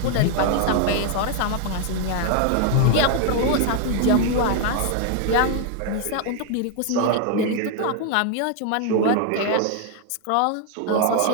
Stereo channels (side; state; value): both; different; correlation 0.00